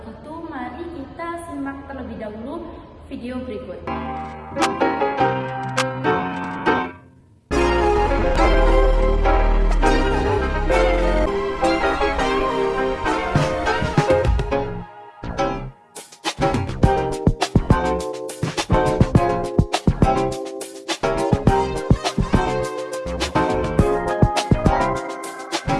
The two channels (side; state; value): both; identical; correlation 1.00